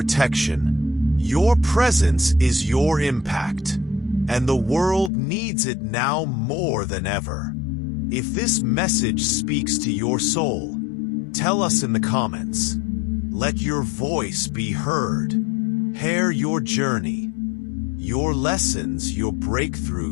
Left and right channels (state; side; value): drops out; right; at 5.1 s